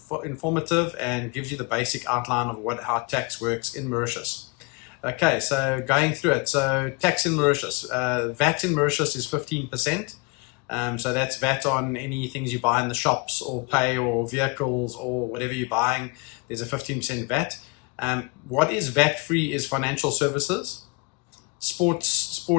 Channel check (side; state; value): right; quieter; 30.2 dB